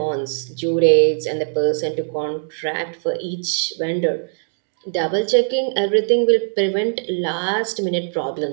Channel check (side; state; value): left; silent; digital silence